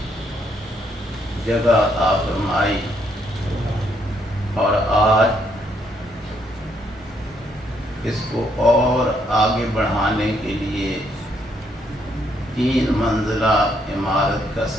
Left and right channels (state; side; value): normal; both; correlation 0.73